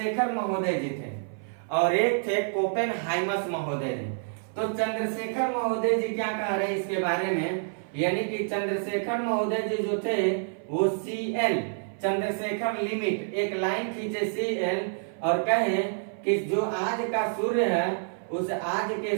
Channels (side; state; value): left; silent; 58 dB below the other